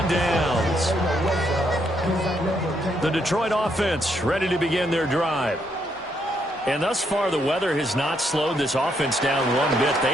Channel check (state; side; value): normal; both; correlation 0.75